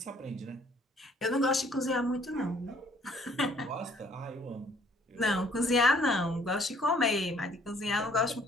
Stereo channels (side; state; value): both; normal; correlation 0.61